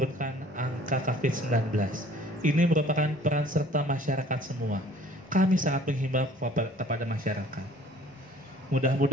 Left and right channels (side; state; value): both; normal; correlation 0.53